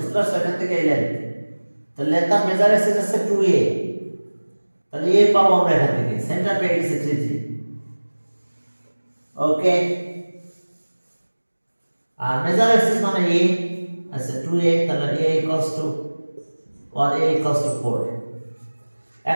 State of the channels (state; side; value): inverted; both; correlation -1.00